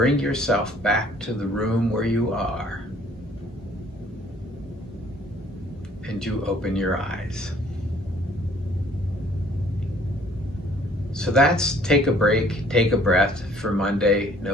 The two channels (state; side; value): normal; both; correlation 0.58